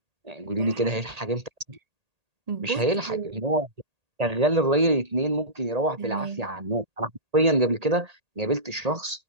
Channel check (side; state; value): left; late; 1.8 ms